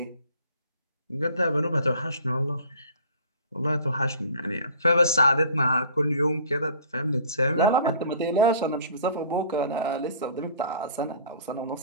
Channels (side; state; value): both; inverted; correlation -0.48